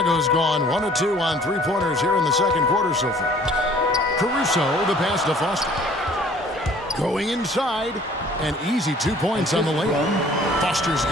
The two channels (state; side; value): normal; both; correlation 0.54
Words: gone 1 of 2 on three-pointers here in the second quarter so far. Caruso, the pass to Foster. Going inside, and easy 2 points on the layup. Foster's